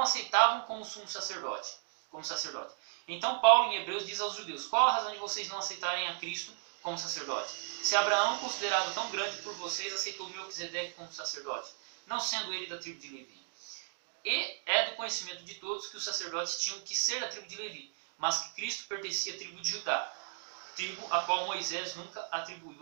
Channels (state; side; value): silent; left; digital silence